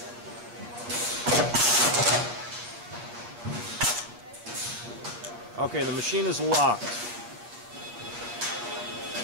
Okay, the machine is locked.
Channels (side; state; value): left; late; 8.6 ms